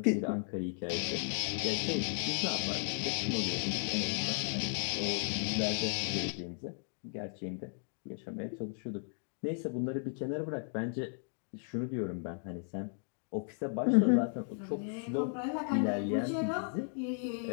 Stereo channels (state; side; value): silent; right; 54 dB below the other